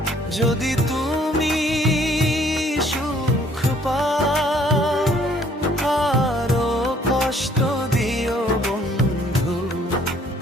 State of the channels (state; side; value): normal; both; correlation 0.61